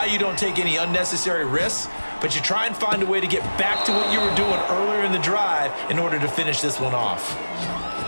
you don't take any unnecessary risks, but you try and find a way to get back to what you were doing earlier in the drive in order to finish this one off.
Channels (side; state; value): both; inverted; correlation -1.00